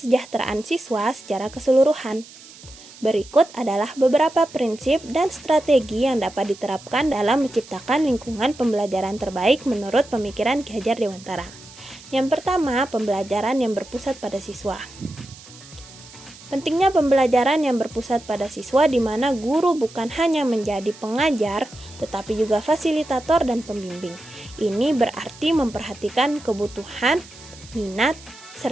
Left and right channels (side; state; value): right; noise; hiss, 20 dB below the sound